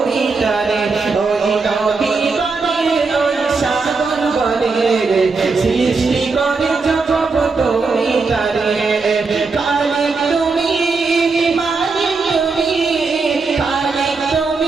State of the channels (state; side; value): quieter; left; 4.3 dB